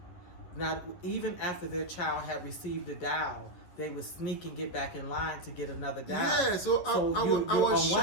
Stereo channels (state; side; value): late; right; 11 ms